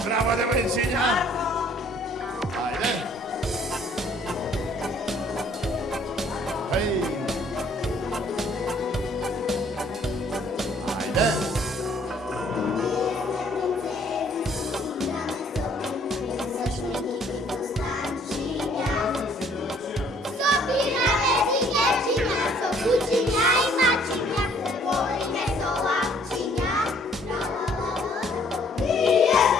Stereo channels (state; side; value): normal; both; correlation 0.60